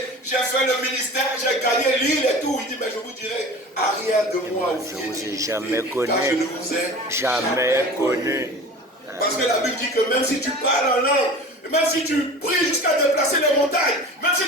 j'ai fait le ministère, j'ai gagné l'île et tout. Il dit, mais je vous dirai, arrière de moi, Je ne vous ai jamais connu. car je ne vous ai Jamais connu. Parce que la Bible dit que même si tu parles en langue, même si tu pries jusqu'à déplacer les montagnes, même si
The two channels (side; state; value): both; normal; correlation 0.37